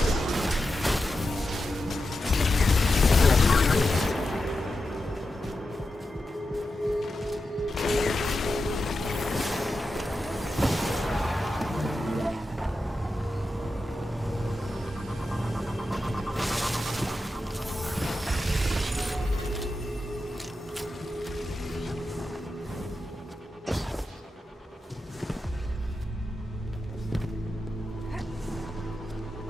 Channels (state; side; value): normal; both; correlation 0.90